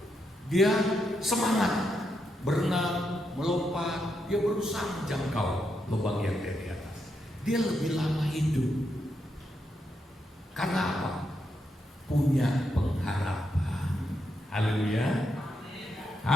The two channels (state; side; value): normal; both; correlation 0.82